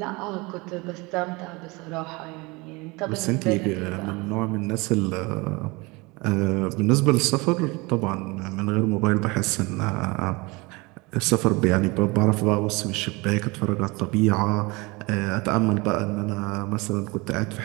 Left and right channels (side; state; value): left; quieter; 25.3 dB